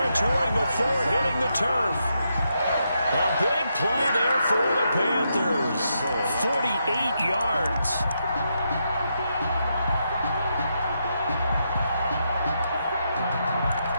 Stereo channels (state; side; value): inverted; both; correlation -0.82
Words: before hitting the turf. A big play there for the Panthers. 48 yards.